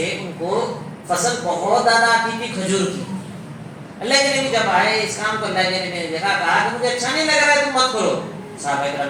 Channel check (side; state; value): both; identical; correlation 1.00